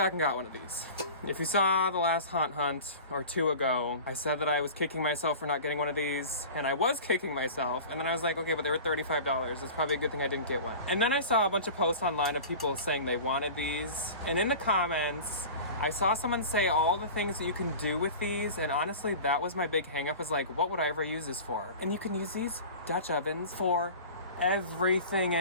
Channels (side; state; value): both; inverted; correlation -0.36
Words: and got one of these. If you saw the last haunt hunt or 2 ago, I said that I was kicking myself for not getting one of these, and I was kicking myself, and then I was like, okay, but they were $35. It's probably a good thing I didn't get one. And then I saw a bunch of posts online of people saying they wanted these, and in the comments, I saw someone say all the things that you can do with these, and honestly, that was my big hang up, is like, what would I ever use this for? And you can use these Dutch ovens for everything